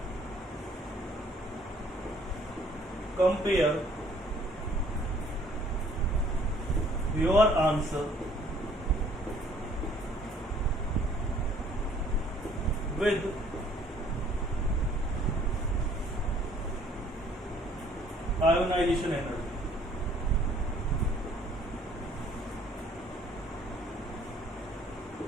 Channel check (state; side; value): normal; both; correlation 0.59